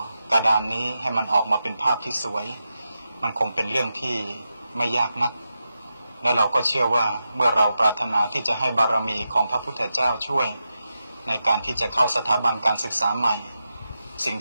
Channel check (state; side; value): inverted; both; correlation -0.89